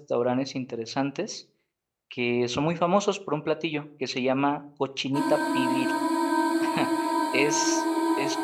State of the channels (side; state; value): both; identical; correlation 1.00